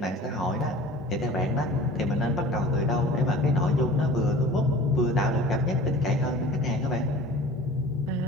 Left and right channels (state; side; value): normal; both; correlation 0.42